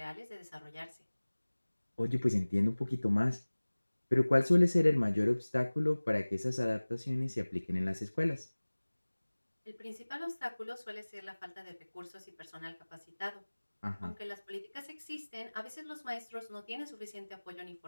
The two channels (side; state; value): both; inverted; correlation -1.00